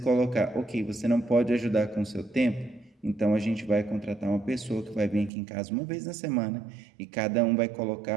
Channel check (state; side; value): drops out; left; at 5.3 s